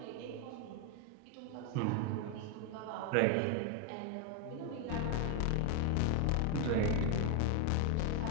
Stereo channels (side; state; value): both; different; correlation 0.00